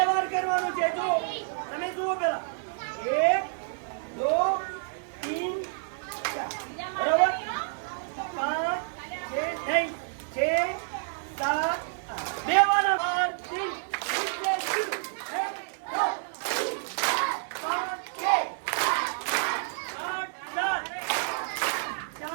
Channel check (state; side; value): silent; left; 59 dB below the other